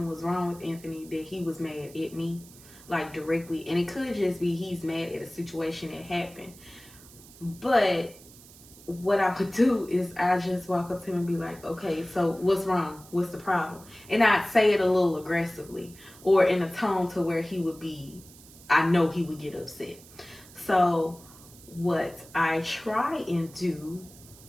was wrong with Anthony that he was mad at me, like, directly. And it could just be he's mad at a situation that happened. But what I would do is I just walk up to him and be like, okay, so what's wrong? What's the problem? And I'd say it a little aggressively or in a tone to where I know he would get upset. So what I try and do,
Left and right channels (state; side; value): noise; right; hiss, 21 dB below the sound